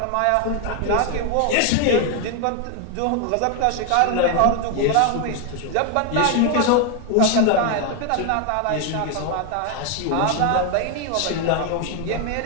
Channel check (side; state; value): both; different; correlation 0.01